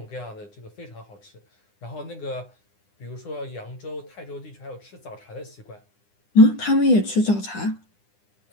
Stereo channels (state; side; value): late; right; 9.9 ms